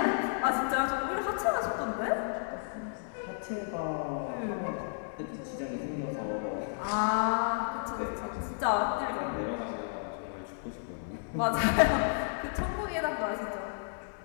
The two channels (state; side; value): silent; right; 56 dB below the other